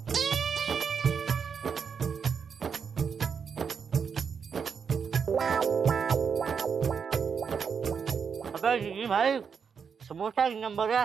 अबे जी भाई, समोसा की नंबर है,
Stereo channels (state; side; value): quieter; left; 6.4 dB